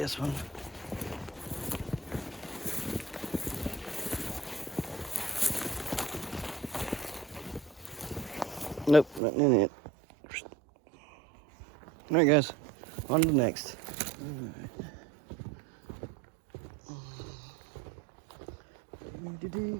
one. Nope, nothing in it. All right, guys, on to the next.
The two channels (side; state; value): left; drops out; at 9.2 s